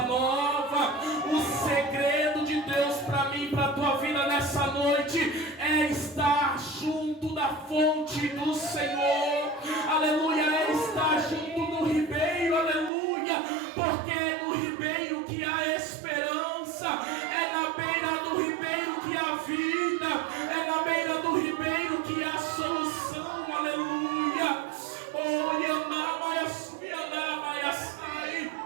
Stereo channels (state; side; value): drops out; left; at 12.9 s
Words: nova. O segredo de Deus para mim, para a tua vida nessa noite, é estar junto da fonte do Senhor, aleluia, é estar junto do ribeiro, aleluia, porque no ribeiro que há esperança, é na beira do ribeiro que há vida, é na beira do ribeiro que há solução, aleluia.